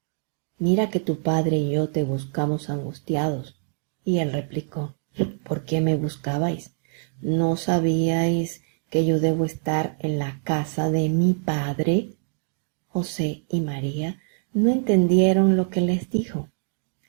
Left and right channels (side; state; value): left; silent; 62 dB below the other